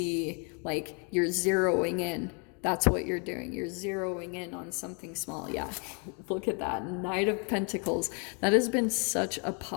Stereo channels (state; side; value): quieter; right; 36.3 dB